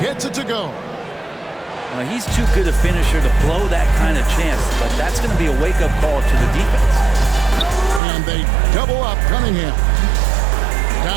gets it to go. Well, he's too good a finisher to blow that kind of chance, but that's going to be a wake-up call to the defense. And they double up Cunningham.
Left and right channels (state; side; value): drops out; left; at 8.0 s